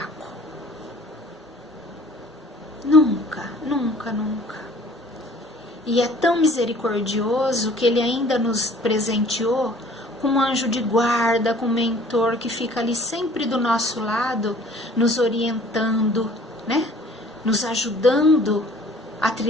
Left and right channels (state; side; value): normal; both; correlation 0.52